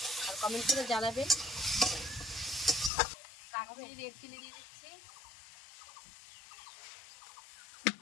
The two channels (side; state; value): right; drops out; at 2.9 s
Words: আর কমেন্ট করে জানাবেন। কাশ্মীরি রেড চিলি দিয়ে দিচ্ছি।